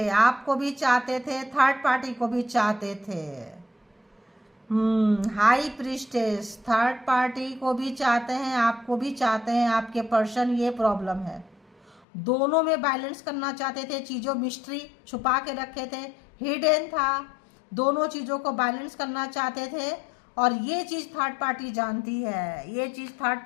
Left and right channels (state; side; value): drops out; right; at 12.0 s